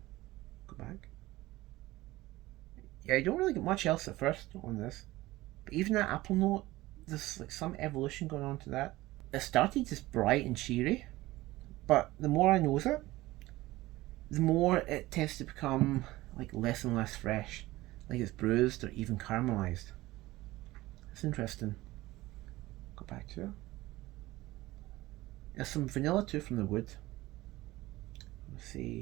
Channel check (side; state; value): left; quieter; 18.3 dB